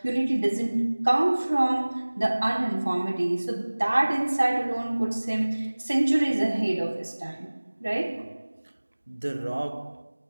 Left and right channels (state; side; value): inverted; both; correlation -1.00